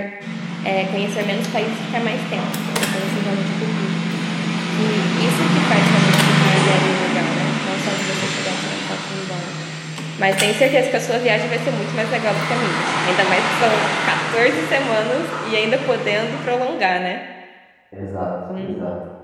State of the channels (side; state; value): both; identical; correlation 1.00